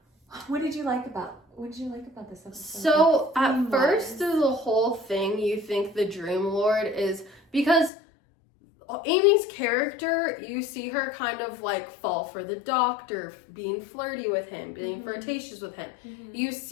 What did you like about this episode? So at first through the whole thing, you think the Dream Lord is, because Amy's character, you see her kind of like fall for the doctor, being flirty with him, being flirtatious with him. You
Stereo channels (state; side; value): drops out; right; at 7.9 s